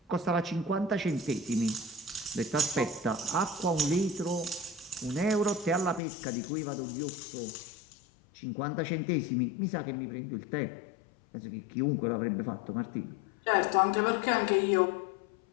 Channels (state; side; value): drops out; right; at 6.0 s